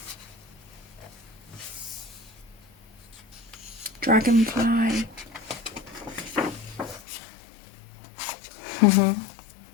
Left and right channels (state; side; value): drops out; right; at 7.0 s